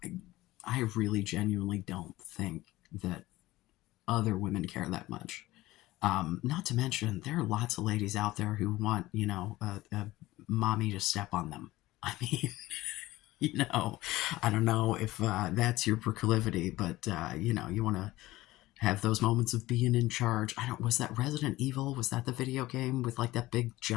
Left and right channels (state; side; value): quieter; right; 17.7 dB